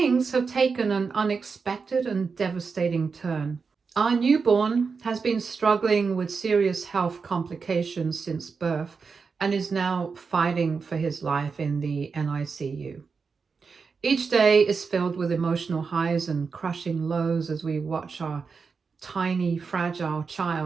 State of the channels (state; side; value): quieter; left; 5.1 dB